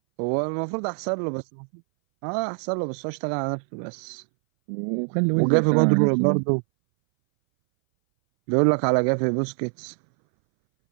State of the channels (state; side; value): silent; left; 61 dB below the other